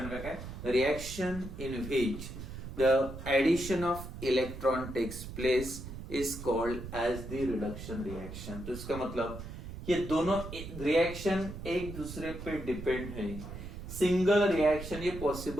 का क्या है? Reaction in which the addition of electron takes place is called as the reduction reaction. तो इसका मतलब ये दोनों रिएक्शन एक दूसरे पे डिपेंड है। सिंगल रिएक्शन ये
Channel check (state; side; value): noise; right; rumble, 10 dB below the sound